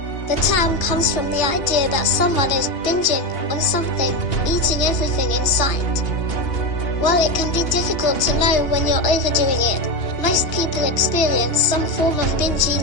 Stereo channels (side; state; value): right; late; 2.8 ms